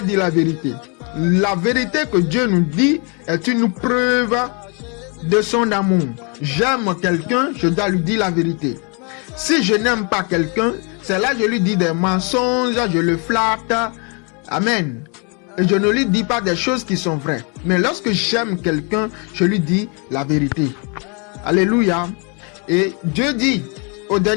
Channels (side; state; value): right; quieter; 34.5 dB